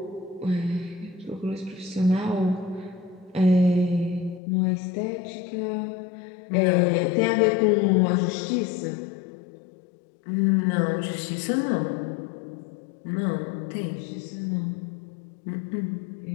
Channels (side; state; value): right; drops out; at 4.4 s